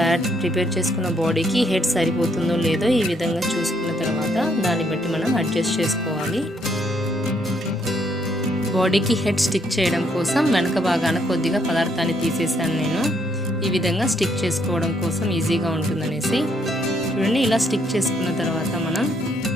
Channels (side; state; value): both; normal; correlation 0.71